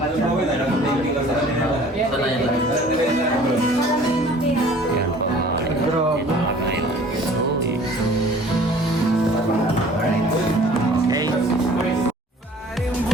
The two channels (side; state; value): both; normal; correlation 0.50